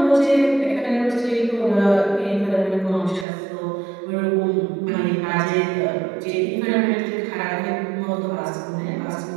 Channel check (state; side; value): drops out; left; at 3.2 s